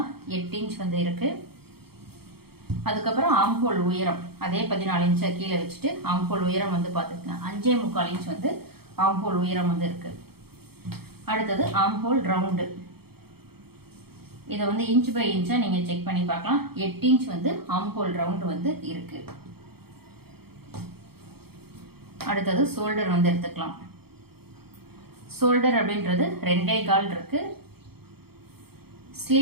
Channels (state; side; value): late; left; 0.96 ms